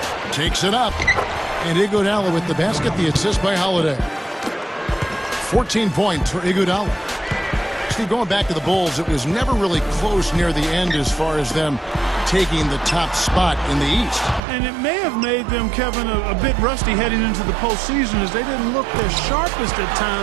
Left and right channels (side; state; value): left; drops out; at 14.4 s